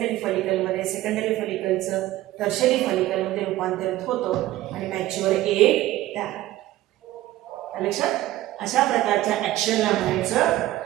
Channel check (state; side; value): quieter; left; 15.6 dB